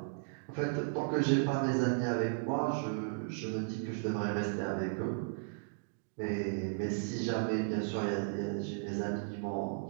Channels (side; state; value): left; silent; digital silence